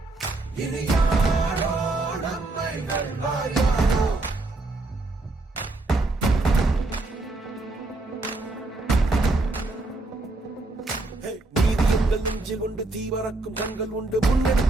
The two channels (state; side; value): quieter; left; 3.0 dB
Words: இனி யாரோ நம்மை வெல்வார்? யாரோ நீதி எங்கள் நெஞ்சில் கொண்டு தீவரக்கும் கண்கள் உண்டு.